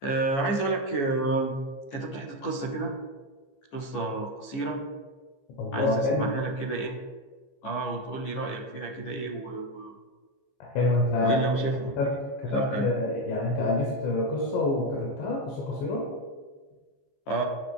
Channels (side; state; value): right; late; 15 ms